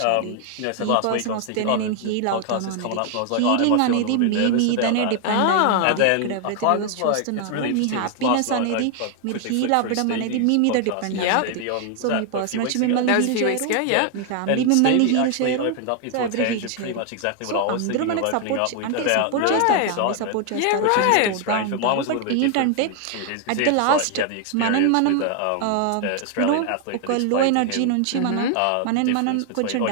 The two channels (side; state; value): both; different; correlation 0.00